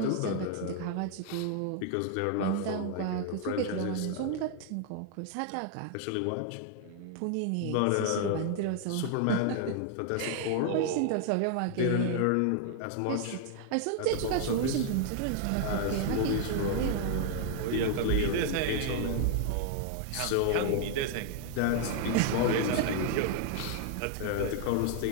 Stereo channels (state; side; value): different; both; correlation 0.00